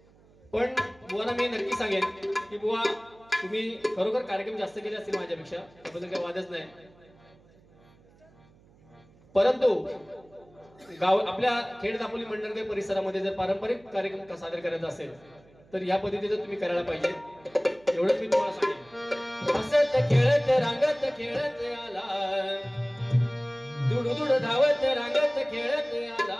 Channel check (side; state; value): right; noise; hum, 28 dB below the sound